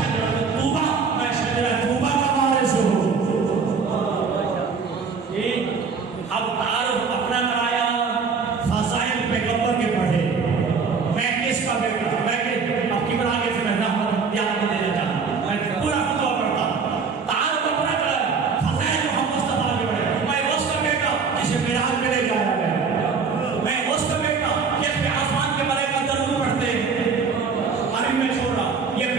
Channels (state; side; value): quieter; left; 5.3 dB